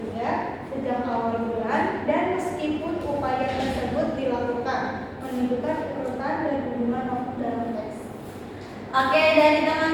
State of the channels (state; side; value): identical; both; correlation 1.00